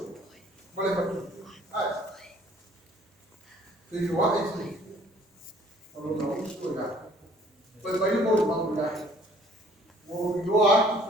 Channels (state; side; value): normal; both; correlation 0.57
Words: vale matu ai ele wa esse não não escolha foi para ir por uma mulher o lo ato